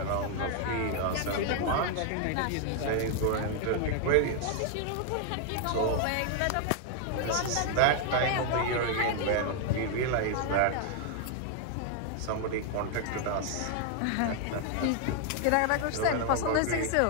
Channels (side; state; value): both; different; correlation 0.00